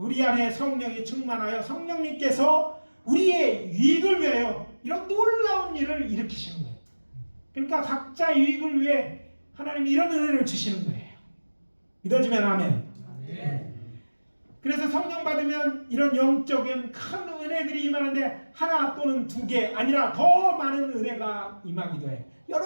안에 성령이 충만하여 성령님께서 우리의 유익을 위하여 이런 놀라운 일을 일으키시는 거예요. 그러니까 각자 유익을 위해 하나님이 이런 은혜를 주시는 거예요. 믿어지면 아멘. 아멘. 그래서 성령 받으면 이런 영적인 큰 은혜들이 임하는데 하나 또는 2개 아니라 더 많은 은혜가 임하기도 해요.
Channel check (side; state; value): both; inverted; correlation -1.00